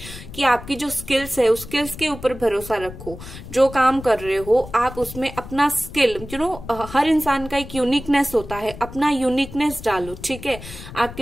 कि आपकी जो स्किल्स है उस स्किल्स के ऊपर भरोसा रखो। जो काम कर रहे हो आप उसमें अपना स्किल, हर इंसान का एक यूनिकनेस होता है, अपना यूनिकनेस डालो। ठीक है,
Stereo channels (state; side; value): noise; left; rumble, 14 dB below the sound